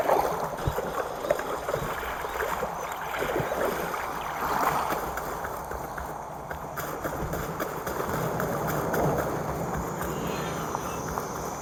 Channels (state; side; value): identical; both; correlation 1.00